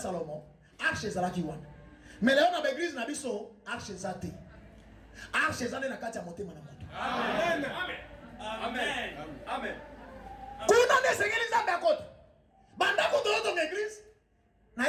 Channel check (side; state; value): both; identical; correlation 1.00